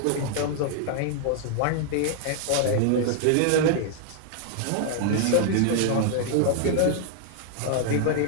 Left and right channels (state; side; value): different; both; correlation 0.00